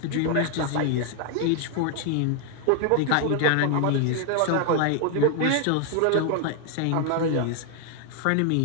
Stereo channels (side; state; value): both; different; correlation 0.00